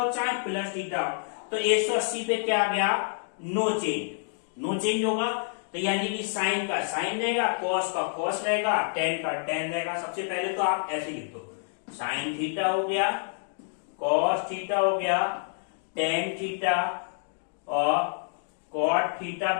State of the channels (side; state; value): right; silent; digital silence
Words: चाहे प्लस थीटा हो। तो 180 पे क्या आ गया, नो चेंज होगा। तो यानी कि साइन का साइन रहेगा, कॉस का कॉस रहेगा, टेन का टेन रहेगा। सबसे पहले तो आप ऐसे लिख दो, साइन थीटा हो गया, कॉस थीटा हो गया, टेन थीटा और कॉट थीटा,